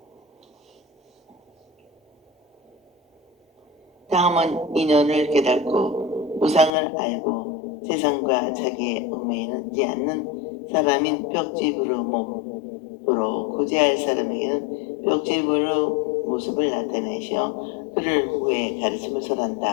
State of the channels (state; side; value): drops out; right; at 6.7 s